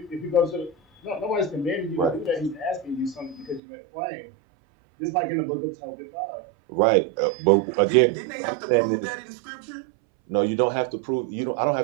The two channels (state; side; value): drops out; left; at 3.6 s